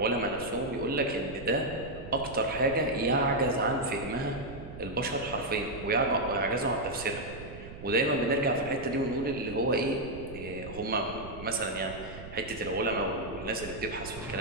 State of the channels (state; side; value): noise; right; rumble, 13 dB below the sound